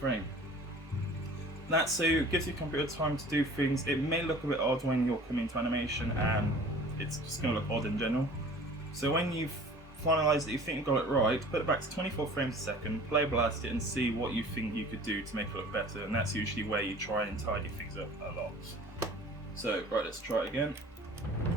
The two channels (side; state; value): both; normal; correlation 0.46